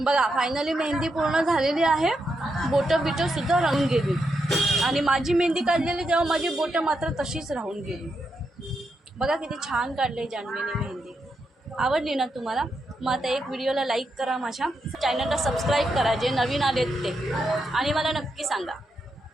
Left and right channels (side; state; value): both; normal; correlation 0.83